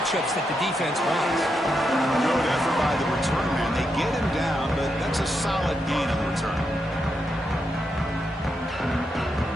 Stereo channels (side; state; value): both; normal; correlation 0.83